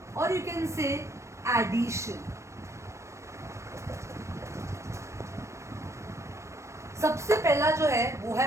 or you can say addition. सबसे पहला जो है वो है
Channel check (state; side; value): late; left; 0.14 ms